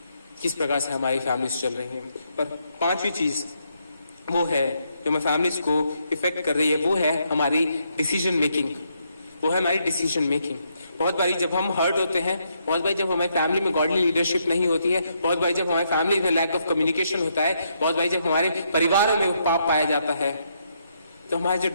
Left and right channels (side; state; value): both; inverted; correlation -0.77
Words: किस प्रकार से हमारी फैमिलीज चल रही हैं? पर 5वीं चीज वो है जो हमारी फैमिलीज को इफेक्ट कर रही है, वो है हमारी डिसीजन मेकिंग। वो है हमारी डिसीजन मेकिंग। बहुत बारी जब हम हर्ट होते हैं, बहुत बारी जब हमारी फैमिली में गॉडली लीडरशिप नहीं होती है, बहुत बारी जब हमारी फैमिली में लैक ऑफ कम्युनिकेशन होता है, बहुत बारी जब हमारे परिवारों में पाप पाया जाता है, तो हमारे जो